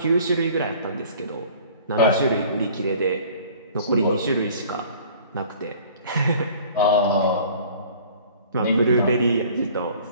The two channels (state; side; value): inverted; both; correlation -0.49